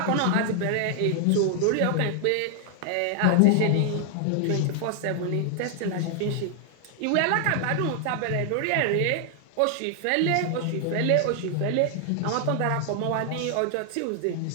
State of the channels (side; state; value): both; different; correlation 0.00